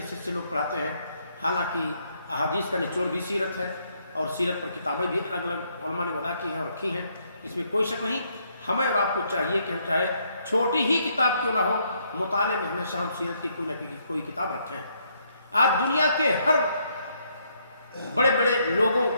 سے لوگ پڑھاتے ہیں۔ حالانکہ احادیث کا نچوڑ بھی سیرت ہے، اور سیرت پر کتابیں بھی الگ الگ علماء نے وضع کی ہیں اور رکھی ہیں، اس میں کوئی شک نہیں۔ ہمیں اور آپ کو چاہیے کہ ہم چاہے چھوٹی ہی کتاب کیوں نہ ہو، مطالعے میں ہمیشہ ہم سیرت کی کوئی نہ کوئی کتاب رکھیں۔ آج دنیا کے ہر بڑے بڑے لوگوں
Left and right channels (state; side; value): inverted; both; correlation -0.72